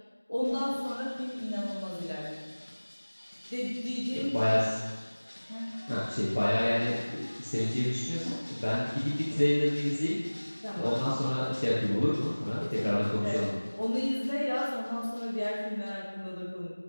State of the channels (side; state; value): both; inverted; correlation -1.00